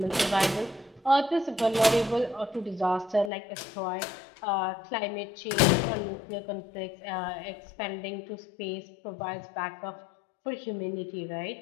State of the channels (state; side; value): drops out; right; at 3.3 s